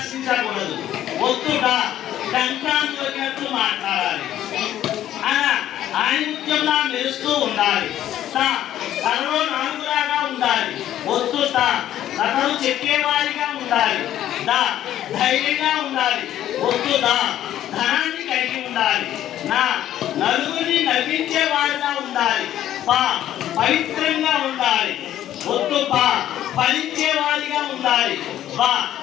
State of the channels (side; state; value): right; quieter; 12.1 dB